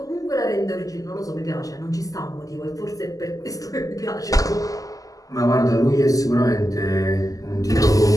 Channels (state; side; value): late; right; 0.17 ms